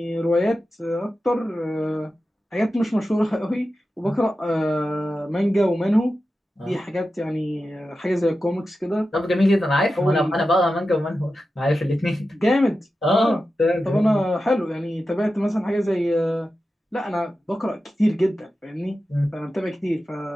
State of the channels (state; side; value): normal; both; correlation 0.92